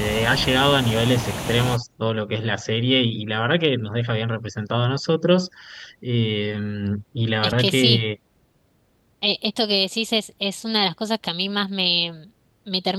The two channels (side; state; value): both; identical; correlation 1.00